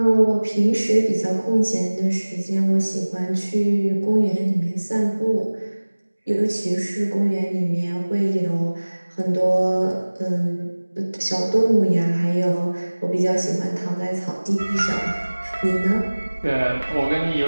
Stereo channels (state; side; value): inverted; both; correlation -1.00